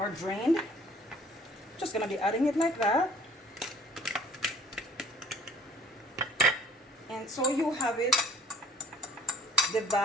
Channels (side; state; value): both; normal; correlation 0.53